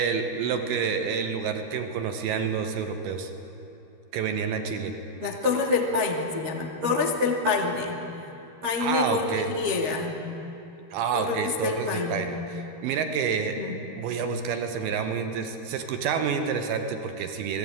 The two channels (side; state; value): left; late; 13 ms